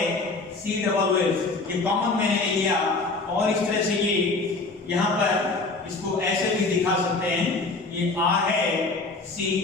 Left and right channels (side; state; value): right; quieter; 3.6 dB